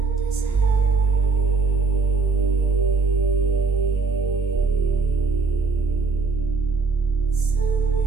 is heavy. The sun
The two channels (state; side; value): quieter; left; 4.2 dB